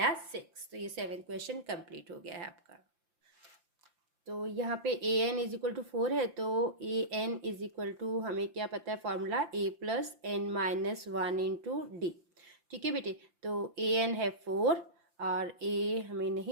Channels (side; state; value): left; late; 5.8 ms